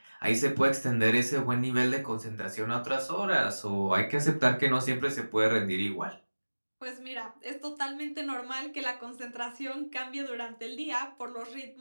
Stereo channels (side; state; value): both; inverted; correlation -1.00